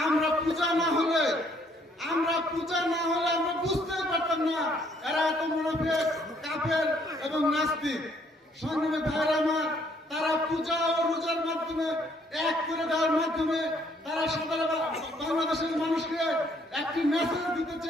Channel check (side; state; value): both; normal; correlation 0.66